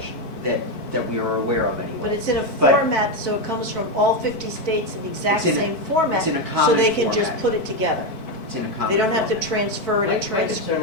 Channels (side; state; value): right; late; 4.6 ms